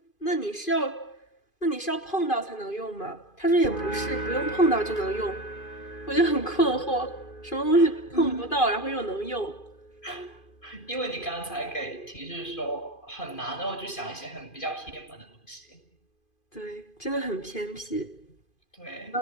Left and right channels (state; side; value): late; right; 2.5 ms